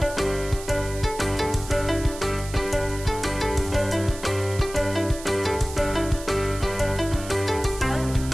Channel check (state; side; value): noise; right; hiss, 14 dB below the sound